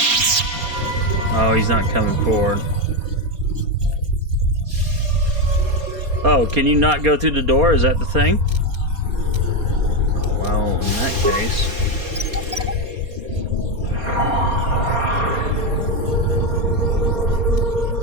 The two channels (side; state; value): left; late; 4.2 ms